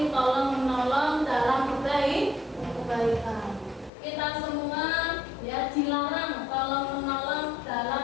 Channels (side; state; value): right; drops out; at 3.9 s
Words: tolong menolong dalam kebaikan. Kita semua ya dilarang tolong menolong